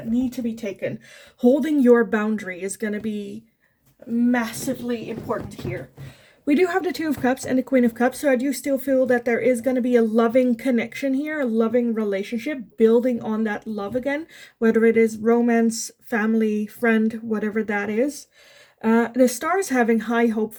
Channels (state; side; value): identical; both; correlation 1.00